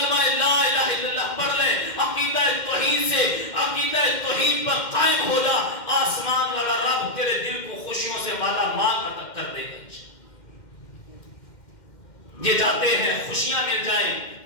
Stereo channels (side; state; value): right; late; 2.1 ms